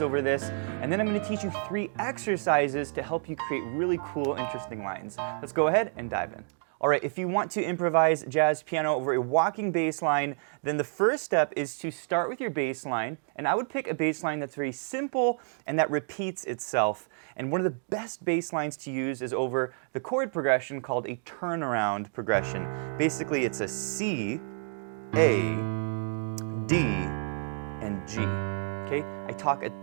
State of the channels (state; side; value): silent; left; 58 dB below the other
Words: over this, and then I'm going to teach you 3 exercises to help you create really cool, interesting lines. Let's go ahead and dive in. Alright, if you want to improvise jazz piano over a walking bass line, then the first step is to start with your bass line, and I would pick a bass line that's very simple and that repeats itself. And one of the best bass lines to use is over the chord progression called a turnaround progression. Basically, it's a C, A, D, and G. Okay? I talk a